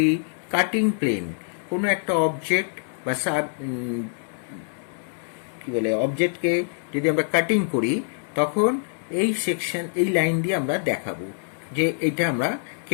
কাটিং প্লেন. কোনো একটা অবজেক্ট বা অবজেক্টকে যদি আমরা কাটিং করি, তখন এই সেকশন, এই লাইন দিয়ে আমরা দেখাবো যে এটা আমরা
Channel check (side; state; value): right; silent; 62 dB below the other